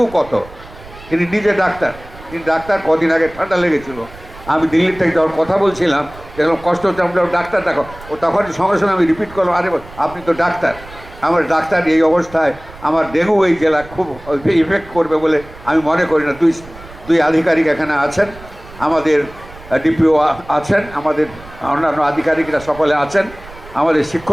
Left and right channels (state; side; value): noise; right; rumble, 19 dB below the sound